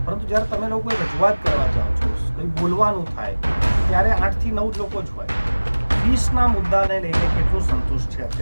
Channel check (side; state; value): both; inverted; correlation -1.00